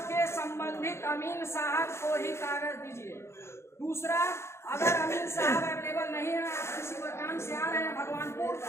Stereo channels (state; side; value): late; right; 0.13 ms